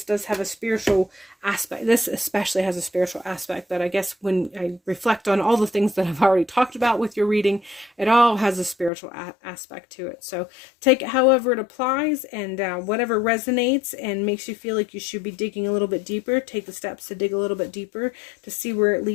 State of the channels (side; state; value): right; drops out; at 8.9 s